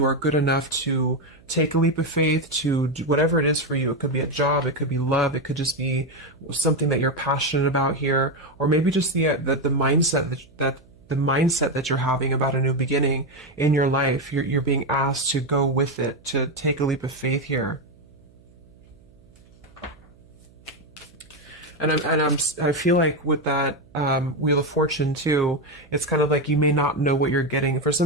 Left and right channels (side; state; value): right; noise; hum, 28 dB below the sound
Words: are good enough to take a leap of faith, to do whatever it is for you. It could be a job, it could be love, it could just be something that you're passionate about here, or maybe just the mindset that you're having about a new beginning in your life. You're being asked to go with it, to take a leap of faith here. And I feel like with that Wheel of Fortune too, it's kind of like you may not know what you're getting. For